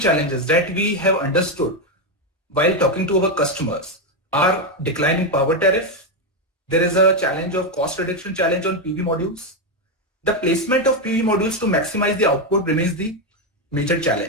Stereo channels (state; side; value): normal; both; correlation 0.06